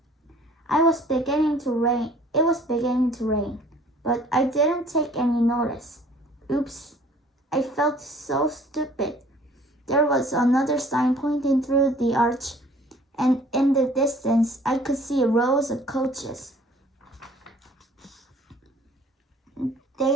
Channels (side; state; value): both; normal; correlation 0.53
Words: It was beginning to rain, but I didn't take any notice. Oops, I felt so stupid. There was another sign pointing through the arch, and in the distance I could see rows of coaches.